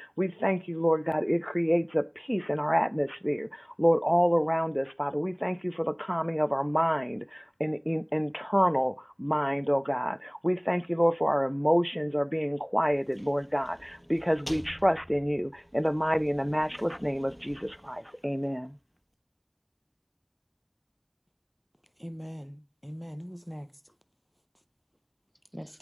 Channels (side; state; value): both; identical; correlation 1.00